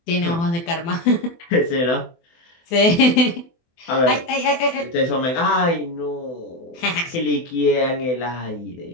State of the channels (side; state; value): right; late; 24 ms